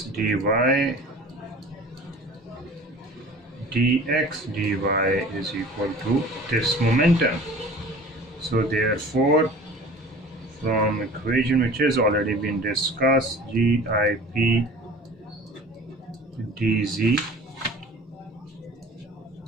dy is equal to this momentum. So therefore, from equation which has already been discussed, GIP dz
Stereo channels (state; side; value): normal; both; correlation 0.43